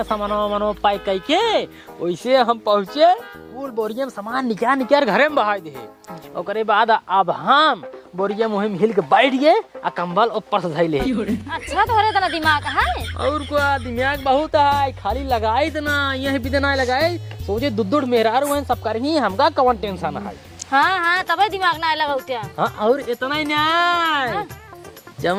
सामानो मनो पाई कई के वैसे हम पहुँचे फूल बोरिया में सामान निकाल निकाल घरे में बहा दे। ओकरे बाद अब हम बोरिया मुहिम हिल के बैठ गए आ कंबल ऊपर से धैले। अच्छा तो तना दिमाग है और को दिमाग बहुत है, खाली लगाई ना यही भी ना लगाए सोचे दुद्दुड़ मेहरार हुए सब कर ही हमका कौन टेंशन है। हाँ हाँ तब दिमाग ना लगा उठा। हाँ और इतना ही नहीं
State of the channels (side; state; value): both; identical; correlation 1.00